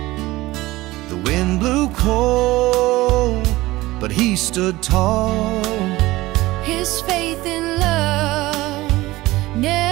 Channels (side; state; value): left; quieter; 18.6 dB